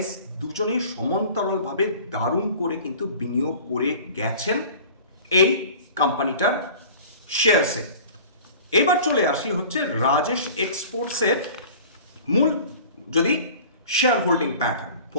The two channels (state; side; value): inverted; both; correlation -0.43